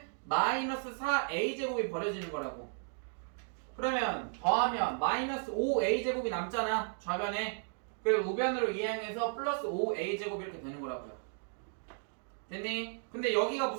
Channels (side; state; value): left; silent; 55 dB below the other